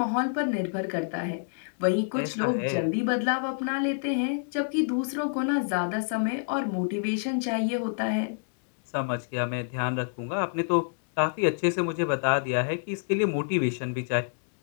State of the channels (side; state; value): right; silent; digital silence